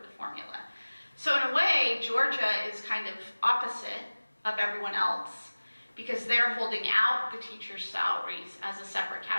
formula. So in a way, Georgia is kind of opposite of everyone else, because they're holding out the teachers' salaries as a separate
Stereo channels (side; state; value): both; inverted; correlation -1.00